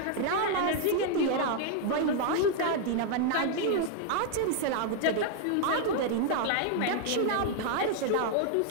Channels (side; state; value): both; different; correlation 0.00